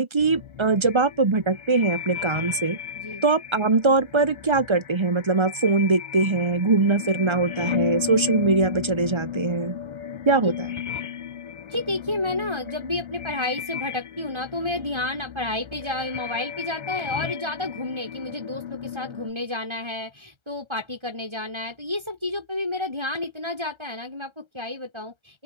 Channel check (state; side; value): late; left; 1.3 ms